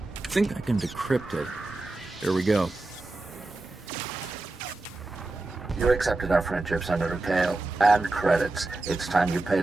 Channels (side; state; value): left; quieter; 3.1 dB